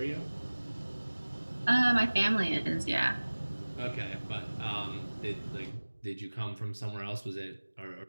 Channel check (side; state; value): both; inverted; correlation -1.00